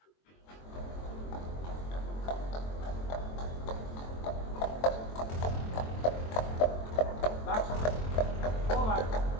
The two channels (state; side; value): late; right; 23 ms